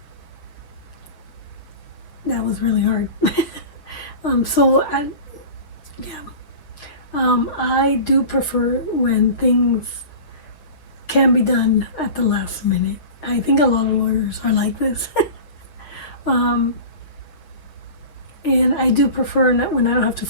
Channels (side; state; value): right; late; 6.7 ms